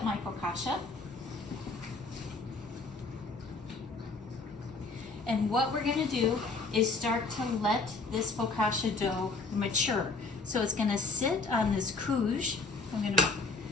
my focaccia. And what we're going to do is start to let this focaccia dough mature. So it's going to sit on this couche. I'm going to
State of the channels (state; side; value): quieter; right; 3.8 dB